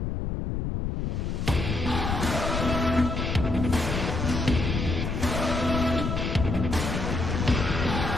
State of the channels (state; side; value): noise; left; rumble, 2 dB below the sound